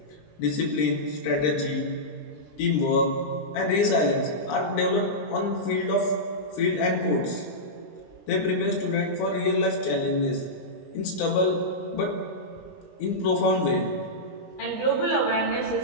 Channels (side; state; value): right; late; 20 ms